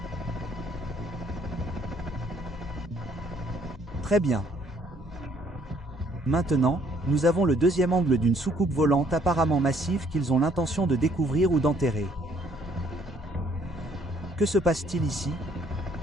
Très bien. Maintenant, nous avons le deuxième angle d'une soucoupe volante apparemment massive qu'ils ont l'intention de découvrir ou d'enterrer. Que se passe-t-il ici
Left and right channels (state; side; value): normal; both; correlation 0.64